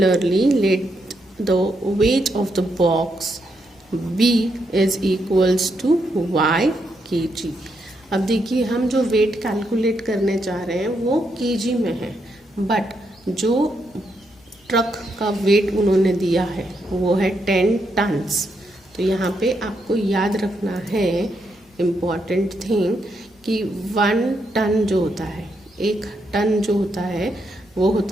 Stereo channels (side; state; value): both; normal; correlation 0.80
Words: let the weight of the box B is equals to y kg। अब देखिए, हम जो वेट कैलकुलेट करने चाह रहे हैं वो kg में है, बट जो ट्रक का वेट उन्होंने दिया है वो है 10 टन्स। तो यहाँ पे आपको याद रखना है इम्पॉर्टेंट थिंग कि 1 टन जो होता है, 1 टन जो होता है वो